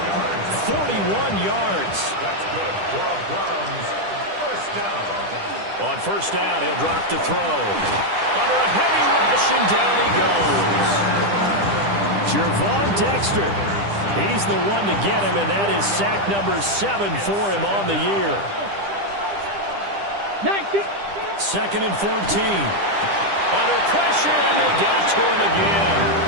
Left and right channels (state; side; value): late; left; 10 ms